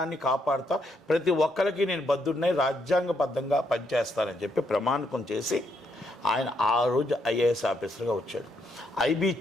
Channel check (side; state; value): both; normal; correlation 0.76